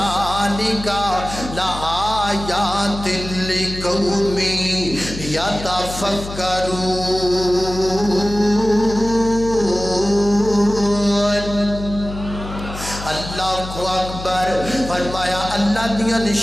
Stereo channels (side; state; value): left; noise; hum, 10 dB below the sound